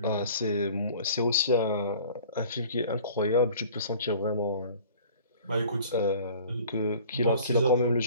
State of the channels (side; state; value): both; inverted; correlation -0.48